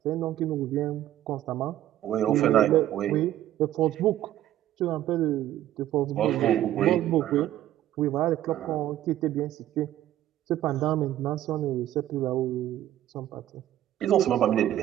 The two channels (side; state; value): left; quieter; 12.9 dB